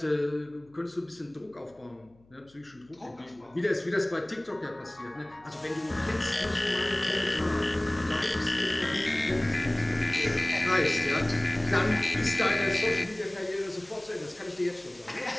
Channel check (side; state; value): left; noise; hum, 30 dB below the sound